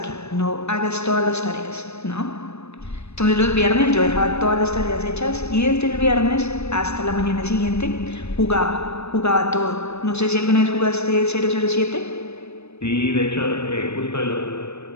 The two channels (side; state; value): right; late; 0.80 ms